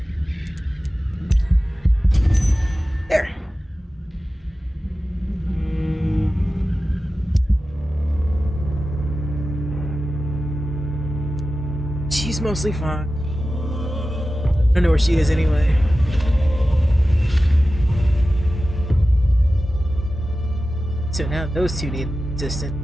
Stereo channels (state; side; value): normal; both; correlation 0.94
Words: There. She's mostly fine. I don't know where she is anyway. So now those two need